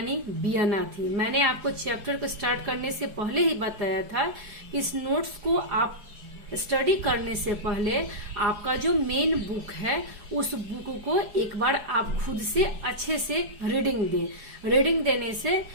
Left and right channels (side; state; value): left; late; 4.8 ms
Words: वियना थी। मैंने आपको चैप्टर को स्टार्ट करने से पहले ही बताया था कि इस नोट्स को आप स्टडी करने से पहले आपका जो मेन बुक है उस बुक को एक बार आप खुद से अच्छे से रीडिंग देने से